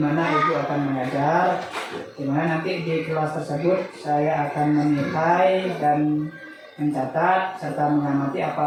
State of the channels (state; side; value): identical; both; correlation 1.00